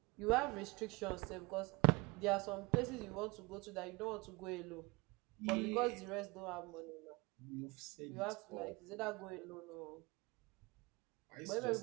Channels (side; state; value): left; quieter; 25.6 dB